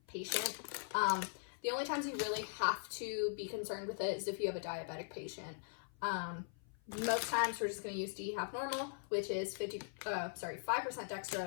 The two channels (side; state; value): right; silent; 51 dB below the other